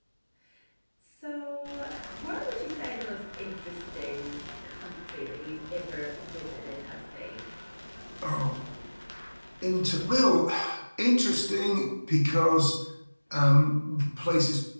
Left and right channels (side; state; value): both; inverted; correlation -1.00